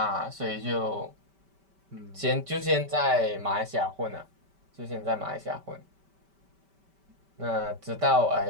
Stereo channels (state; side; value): late; left; 5.1 ms